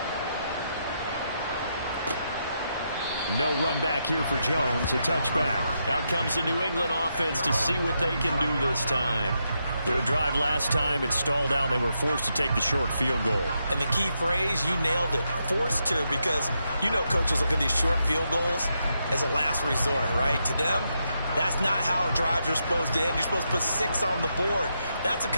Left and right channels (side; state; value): both; inverted; correlation -0.82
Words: No run back here for Jones, a touchback. Out comes the New England offense to see what they can do this time. Their drive last time, it stalled out. They were forced to take the short field goal. And the key phrase, you nailed it, forced to, because you know coaches look at these short field goals as a last resort, right? To them, that's not how drives are supposed to end. You're supposed to put 6 on the board. That's a